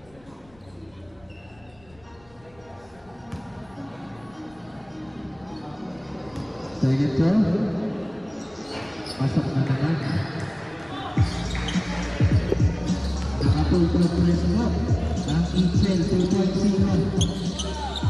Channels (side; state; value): left; noise; rumble, 29 dB below the sound